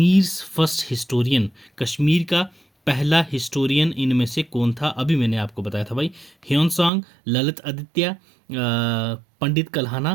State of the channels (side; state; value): left; drops out; at 6.9 s